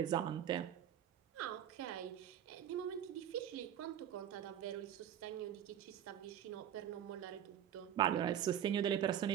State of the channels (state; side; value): quieter; left; 10.1 dB